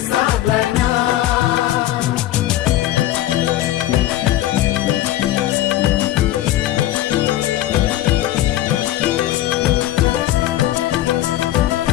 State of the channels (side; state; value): right; quieter; 14.1 dB